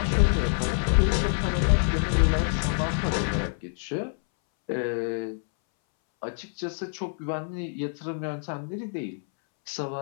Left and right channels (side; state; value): right; silent; 60 dB below the other